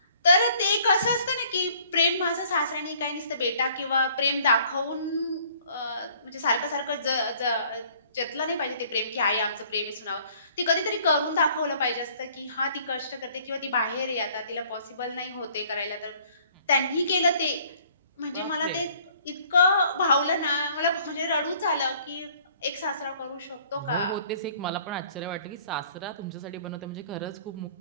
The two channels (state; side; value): inverted; both; correlation -0.57